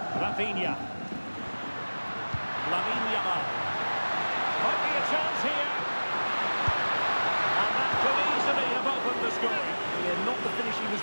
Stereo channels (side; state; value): both; inverted; correlation -1.00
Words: Rafinha. Lamine Yamal. Might be a chance here. And that could easily have opened the scoring. Yeah, not the finish he was